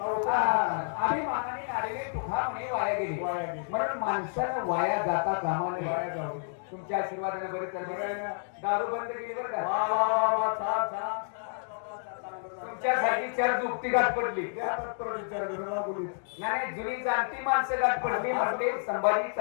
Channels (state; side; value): silent; right; digital silence